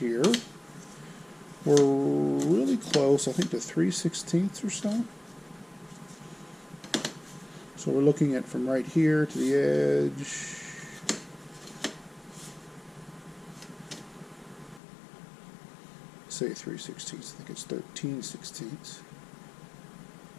we're really close, I think, to 3/16 or so. So we're looking at from right here to the edge. Say 3/16, I think it's 13/16.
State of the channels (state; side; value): drops out; right; at 14.8 s